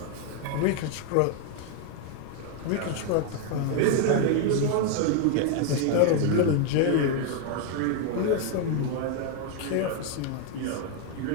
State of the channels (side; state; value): both; different; correlation 0.00